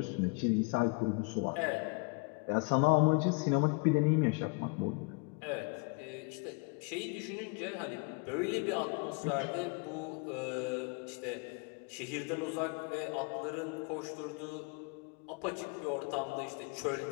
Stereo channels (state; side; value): quieter; right; 31.9 dB